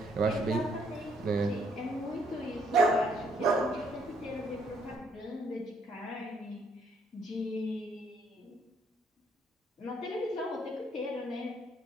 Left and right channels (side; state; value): both; normal; correlation 0.69